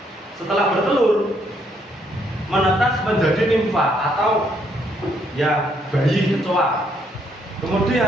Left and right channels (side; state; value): both; normal; correlation 0.71